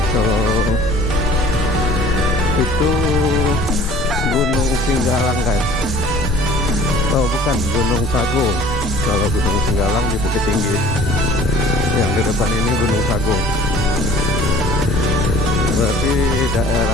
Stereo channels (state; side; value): normal; both; correlation 0.50